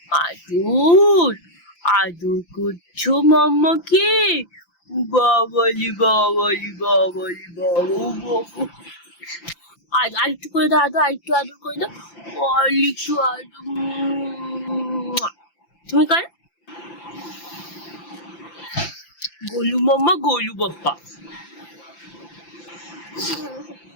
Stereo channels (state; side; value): late; right; 5.9 ms